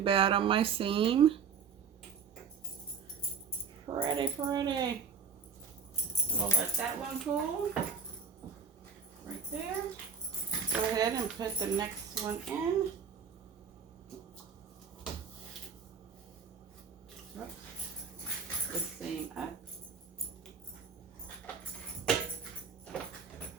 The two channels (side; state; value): left; quieter; 5.9 dB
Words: on my seam. Pretty. We'll let that one cool. Right there. Go ahead and put the next one in. The seam up.